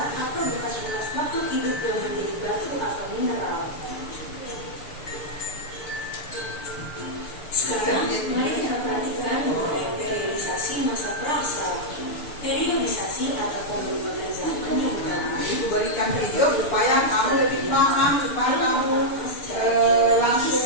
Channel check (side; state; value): right; late; 6.8 ms